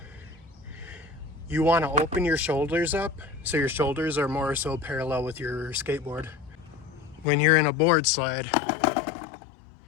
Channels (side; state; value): right; drops out; at 7.2 s